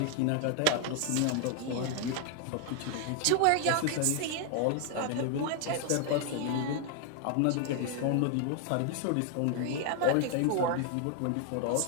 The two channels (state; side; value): different; both; correlation 0.00